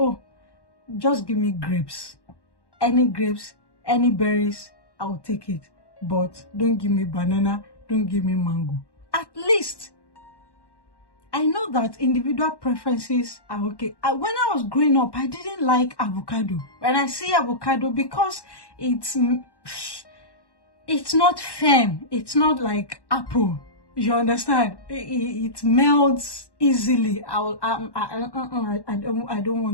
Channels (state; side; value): late; right; 1.1 ms